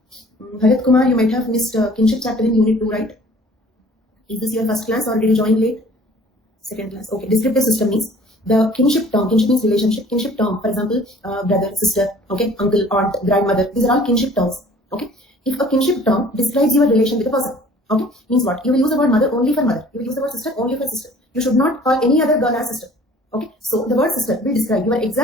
Bharat Kumar, you might have missed kinship chapter in Unit 2, right? Is this your first class or did you join late? Second class. Okay. Descriptive system means the kinship term. Kinship means relationship. Kinship term, for example, brother, sister, okay, uncle, aunt, grandmother. These are all kinship terms. Okay. If a kinship term describes your relation with a person, okay, means what? You will use the word mother only for mother. You will use the word sister only for sister. You should not call any other girl as sister. Okay. So the word sister will describe your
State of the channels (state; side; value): normal; both; correlation 0.51